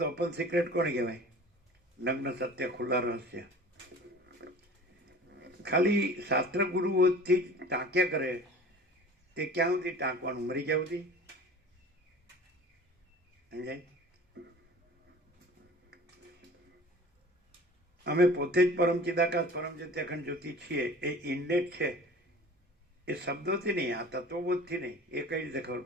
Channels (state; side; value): normal; both; correlation 0.42